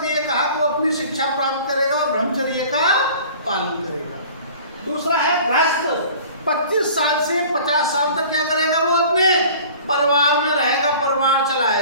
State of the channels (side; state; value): both; inverted; correlation -0.45